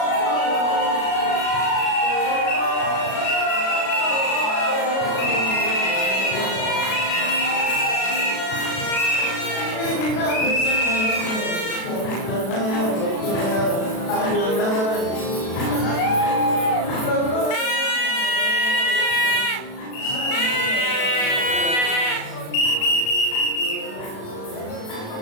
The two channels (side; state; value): right; late; 36 ms